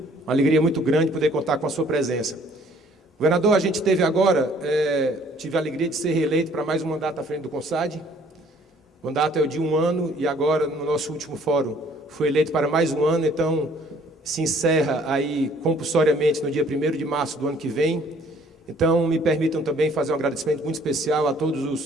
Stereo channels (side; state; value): both; normal; correlation 0.59